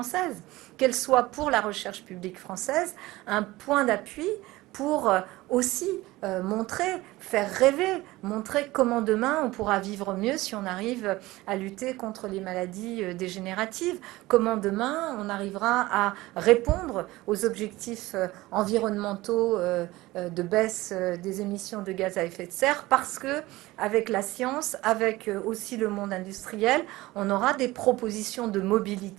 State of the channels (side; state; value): left; quieter; 18.9 dB